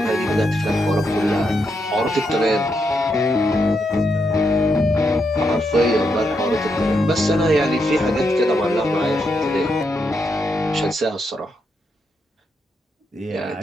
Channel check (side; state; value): both; normal; correlation 0.81